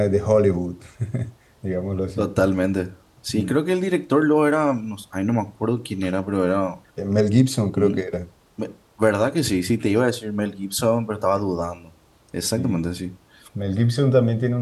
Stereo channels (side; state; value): both; identical; correlation 1.00